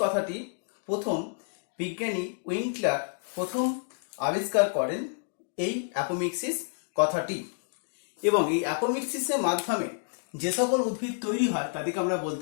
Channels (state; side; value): silent; right; digital silence